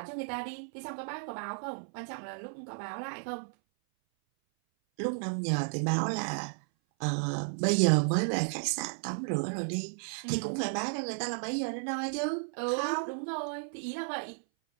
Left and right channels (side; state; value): left; silent; 56 dB below the other